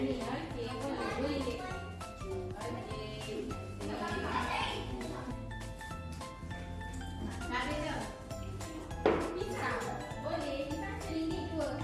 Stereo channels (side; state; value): both; identical; correlation 1.00